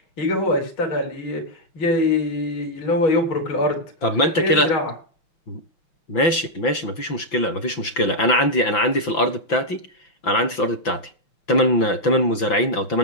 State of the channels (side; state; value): right; late; 5.9 ms